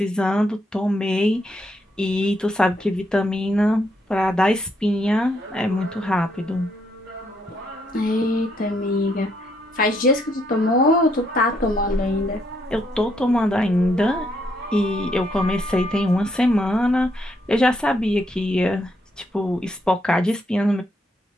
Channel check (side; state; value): both; normal; correlation 0.74